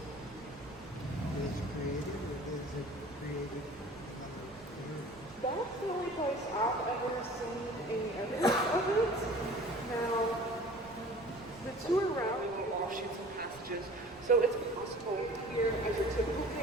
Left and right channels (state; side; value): noise; right; rumble, 24 dB below the sound